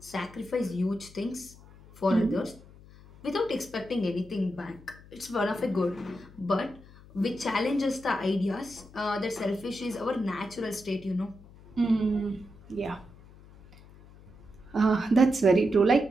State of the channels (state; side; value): noise; left; hum, 22 dB below the sound